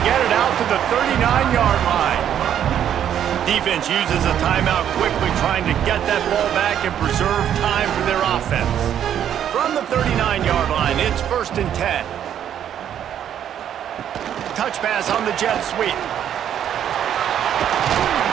get it out to the 39-yard line. Defense uses a timeout quickly, trying to get that ball back and preserve time for their offense. From the 39-yard line, it's 1st and 10. Touch pass on the jet sweep.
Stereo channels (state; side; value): quieter; left; 9.8 dB